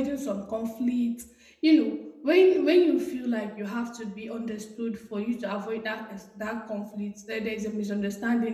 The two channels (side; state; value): both; identical; correlation 1.00